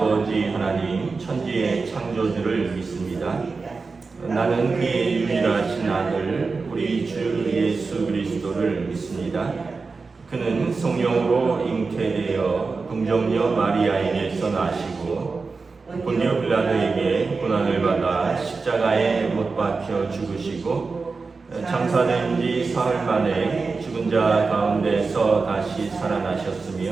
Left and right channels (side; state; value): left; quieter; 4.3 dB